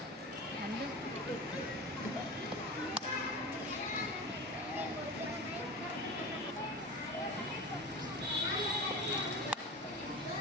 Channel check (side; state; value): both; normal; correlation 0.30